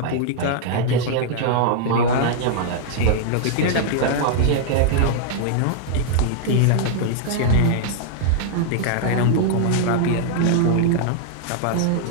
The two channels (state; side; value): different; both; correlation -0.01